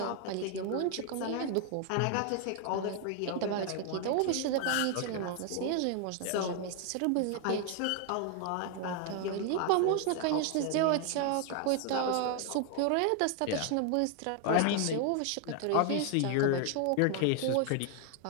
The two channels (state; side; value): different; both; correlation 0.00